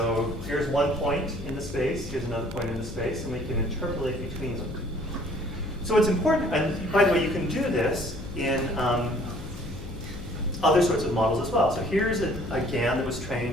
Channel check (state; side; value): noise; left; hum, 12 dB below the sound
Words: here's one point in the space, here's another point in the space, and we can interpolate between them. So it's important, and by the way, you can do this in other sorts of models as well. So here's a GAN that was